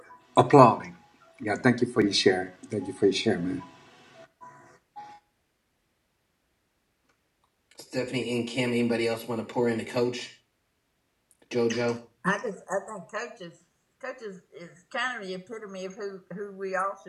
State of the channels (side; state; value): both; identical; correlation 1.00